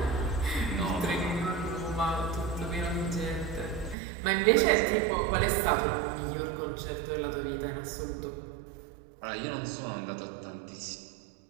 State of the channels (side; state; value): left; drops out; at 4.0 s